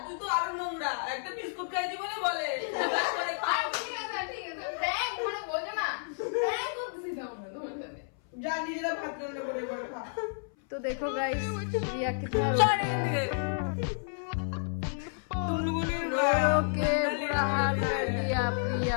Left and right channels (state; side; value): silent; right; 57 dB below the other